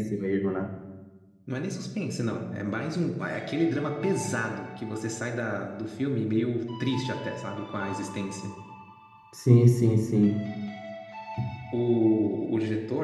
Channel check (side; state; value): both; identical; correlation 1.00